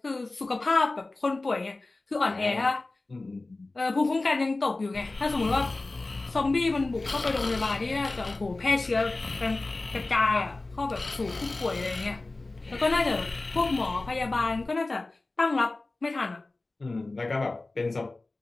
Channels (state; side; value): quieter; right; 3.2 dB